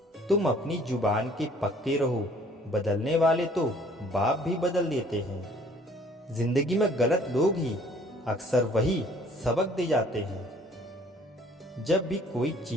तुम अपनी जुबान के पक्के रहो, बदलने वाले तो बाप भी बदल देते हैं। जिंदगी में गलत लोग ही अक्सर वही सबक दे जाते हैं। जब भी कोई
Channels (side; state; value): both; normal; correlation 0.56